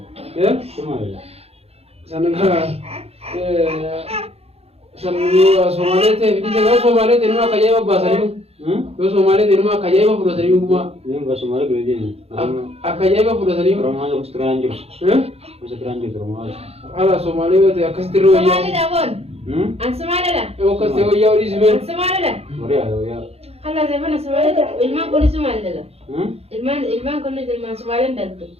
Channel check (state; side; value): late; left; 0.29 ms